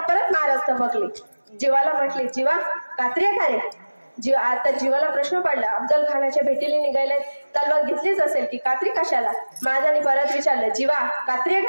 महाराज थबकले. जीवाला म्हटले, जीवा कात्री आहे का रे? आता जीवाला प्रश्न पडला. अफजल खानाच्या भेटीला निघायला तलवार घेतलीच असेल की कात्री कशाला? महाराजांनी परत विचारलं, जीवा कात्री आहे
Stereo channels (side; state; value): both; inverted; correlation -1.00